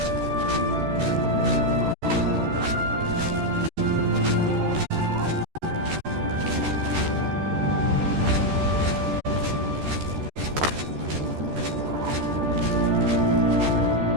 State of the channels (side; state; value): left; late; 13 ms